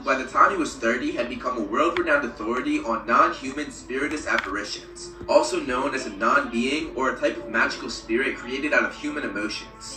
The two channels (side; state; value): both; identical; correlation 1.00